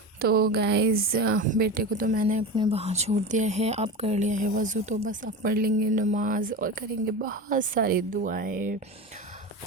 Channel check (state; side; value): normal; both; correlation 0.25